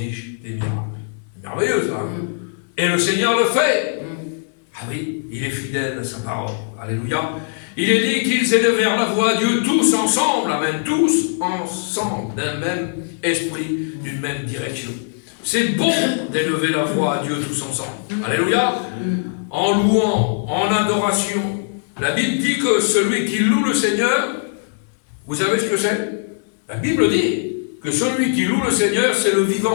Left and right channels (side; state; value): right; silent; 66 dB below the other